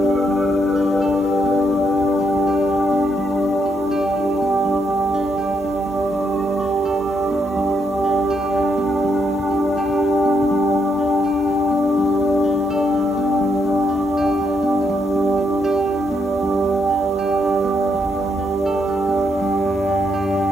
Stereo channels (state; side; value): normal; both; correlation 0.77